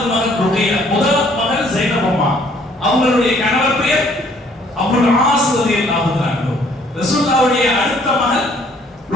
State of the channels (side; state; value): both; normal; correlation 0.62